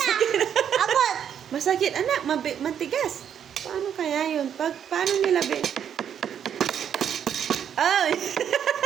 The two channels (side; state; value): left; quieter; 8.7 dB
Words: Abot. Masakit anak, matigas. Paano kaya yun? Paano nila Ay!